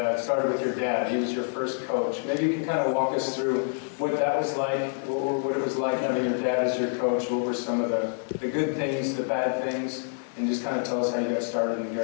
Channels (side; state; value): right; silent; 60 dB below the other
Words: started with your dad. He was your first coach. Maybe you can kind of walk us through what that was like, what it was like having your dad as your coach. What were some of the good things, the bad things, and just kind of tell us how you got started in the